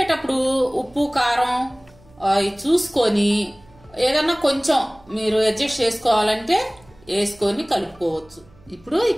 ఉప్పు కారం చూసుకొని ఏదన్నా కొంచెం మీరు అడ్జస్ట్ చేసుకోవాలంటే వేసుకొని కలుపుకోవచ్చు. ఇప్పుడు ఈ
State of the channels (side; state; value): right; noise; hum, 27 dB below the sound